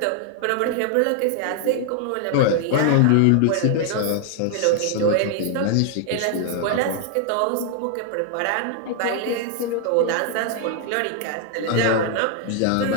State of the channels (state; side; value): different; both; correlation 0.00